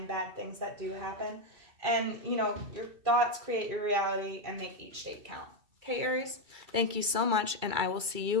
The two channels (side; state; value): left; late; 2.3 ms